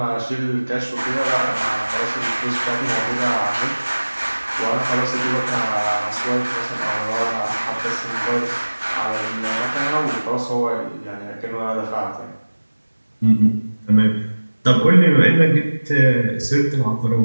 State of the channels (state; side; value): inverted; both; correlation -1.00